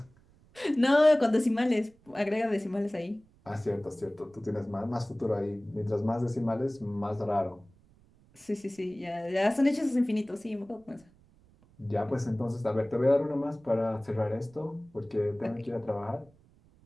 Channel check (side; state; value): right; noise; rumble, 29 dB below the sound